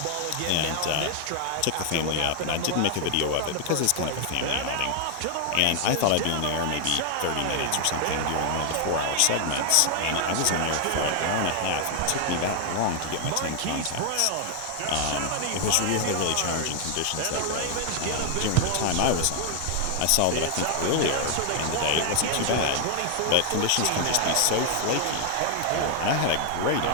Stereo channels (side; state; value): both; different; correlation 0.00